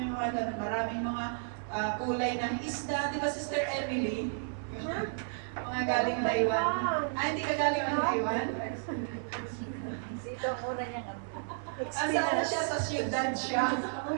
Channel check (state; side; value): silent; left; 56 dB below the other